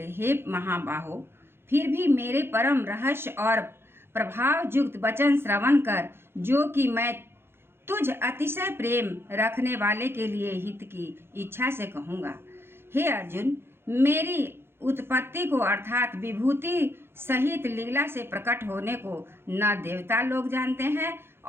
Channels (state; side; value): late; left; 0.11 ms